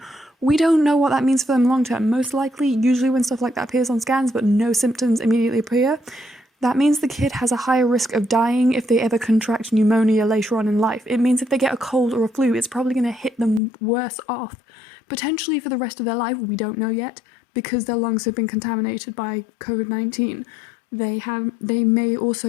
We don't know what that means for them long term. Most likely, usually when stuff like that appears on scans but no symptoms immediately appear, that means the kid has a higher risk of dying if they ever contract pneumonia later on in life. It means if they get a cold or a flu, it's probably going to hit them worse off, potentially for the rest of their life. We don't know yet, because their lungs have been contaminated by COVID-19. They may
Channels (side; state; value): right; drops out; at 13.6 s